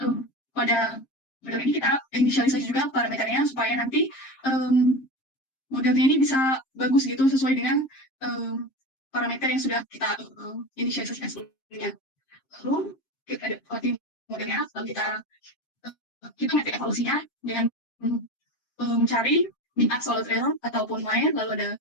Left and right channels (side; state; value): right; late; 7.5 ms